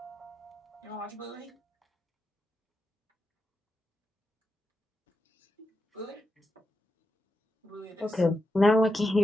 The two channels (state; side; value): normal; both; correlation 0.87